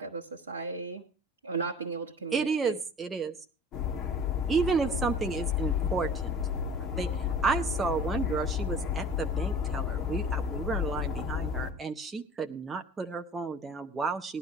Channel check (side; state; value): both; normal; correlation 0.44